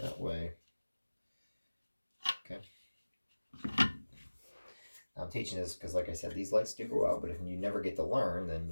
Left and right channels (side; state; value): both; inverted; correlation -1.00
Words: That way. Okay. I'm teaching this because, like I said, these lights do go out, but if you never get to learn, then